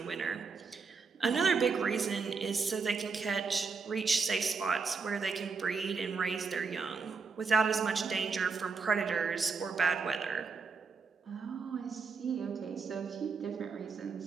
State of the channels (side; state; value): left; quieter; 5.0 dB